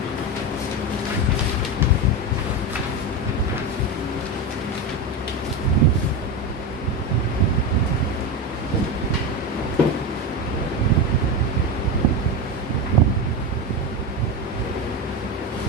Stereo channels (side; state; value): both; normal; correlation 0.17